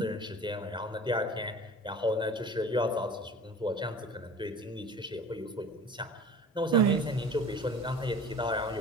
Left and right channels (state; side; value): normal; both; correlation 0.41